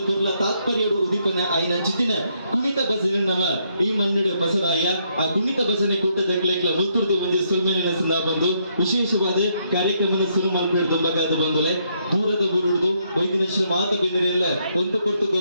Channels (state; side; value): inverted; both; correlation -0.74